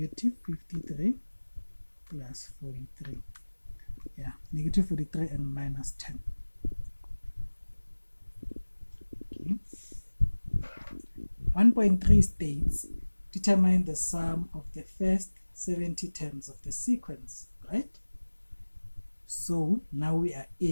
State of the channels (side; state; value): both; inverted; correlation -1.00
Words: 53 plus 43. Yeah, negative 43 and minus 10. Okay. 1.3 states, determine the sum of the first 70 terms of the sequence, right? So now we are